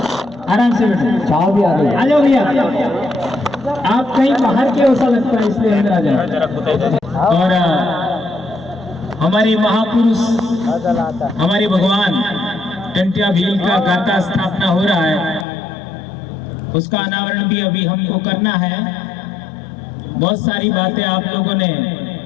आराम से बैठो। छाव भी आ गई। आ जाओ भैया, आप कहीं बाहर के ऐसा लगता है इसलिए अंदर आ जाओ। और हमारे महापुरुष, हमारे भगवान टंटिया भील का गाता स्थापना हो रहा है, उसका अनावरण भी अभी हमको करना है। बहुत सारी बातें आप लोगों ने,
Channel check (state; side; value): drops out; right; at 15.5 s